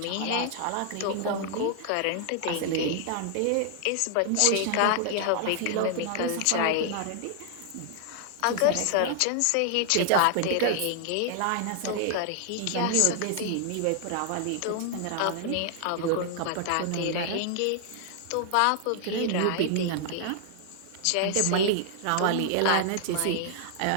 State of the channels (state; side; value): different; both; correlation 0.00